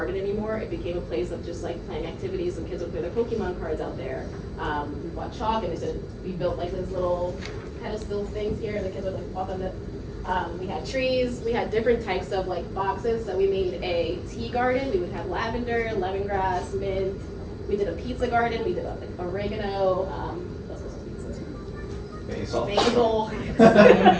anymore. It became a place of just like playing activities. Some kids would play their Pokemon cards out there. We bought chalk and we built like this little pedestal things here, and the kids would like walk on it. We had trees. We had different types of like boxes. So we made a tea garden. We would have lavender, lemongrass, mint. We did a pizza garden. We did like oregano. Basil.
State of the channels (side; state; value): both; identical; correlation 1.00